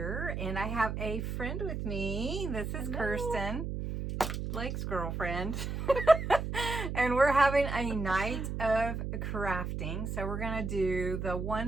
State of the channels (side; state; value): right; noise; hum, 4 dB below the sound